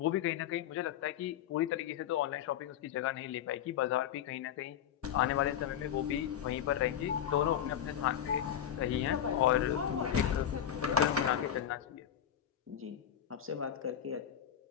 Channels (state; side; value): quieter; right; 9.9 dB